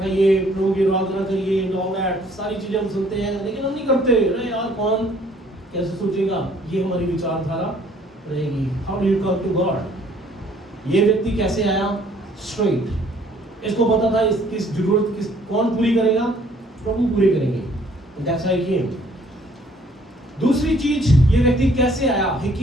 प्रभु की आराधना करिए, ऑल दैट सारी चीजें हम सुनते हैं, लेकिन हम नहीं करते। अरे यार कौन कैसे सोचेगा, ये हमारी विचारधारा रहेगी। How do you come to God? ये व्यक्ति कैसे आया स्ट्रेट, इसको पता था किस जरूरत कौन पूरी करेगा, प्रभु पूरे करेंगे। दैट्स हाउ ही केम। दूसरी चीज, ये व्यक्ति कैसे आया? ही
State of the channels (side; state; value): both; normal; correlation 0.60